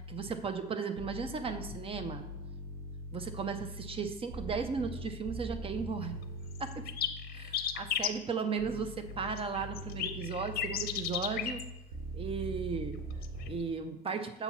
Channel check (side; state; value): both; normal; correlation 0.26